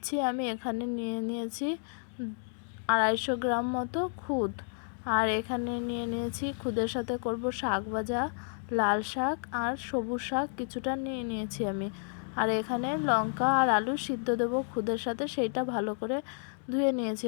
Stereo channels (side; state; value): right; silent; 57 dB below the other